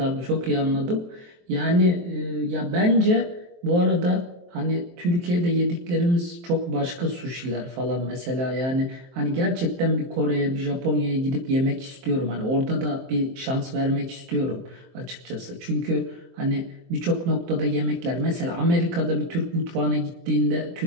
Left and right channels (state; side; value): late; left; 23 ms